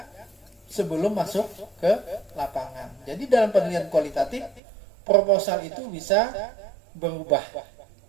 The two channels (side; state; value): left; drops out; at 4.6 s